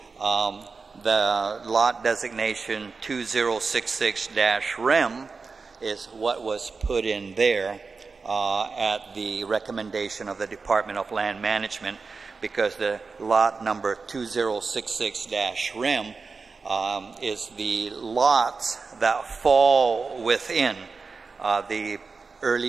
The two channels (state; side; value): quieter; left; 4.5 dB